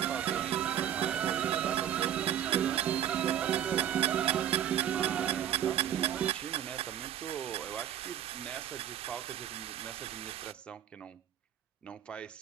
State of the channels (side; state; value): left; quieter; 10.5 dB